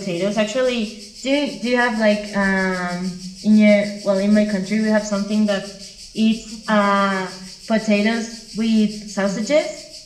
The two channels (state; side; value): identical; both; correlation 1.00